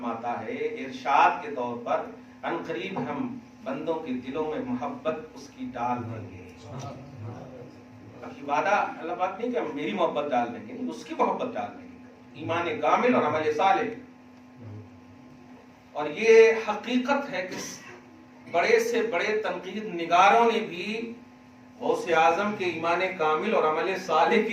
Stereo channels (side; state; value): both; identical; correlation 1.00